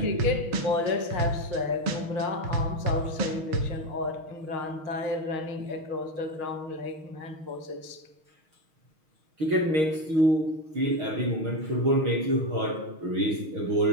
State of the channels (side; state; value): left; late; 6.4 ms